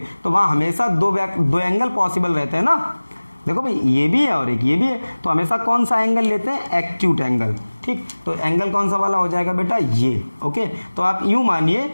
वहां हमेशा दो एंगल पॉसिबल रहते हैं ना। देखो भाई ये भी है और एक ये भी है, तो हमेशा कौन सा एंगल लेते हैं, एक्यूट एंगल, ठीक। तो एंगल कौन सा वाला हो जाएगा बेटा, ये, ओके। तो आप यूं मानिए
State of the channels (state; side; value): inverted; both; correlation -1.00